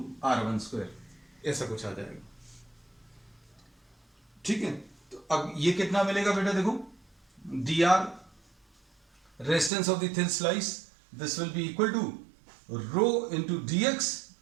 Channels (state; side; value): drops out; left; at 9.7 s